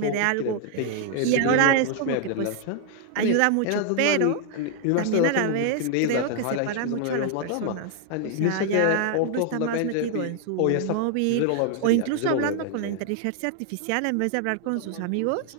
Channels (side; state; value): both; different; correlation 0.00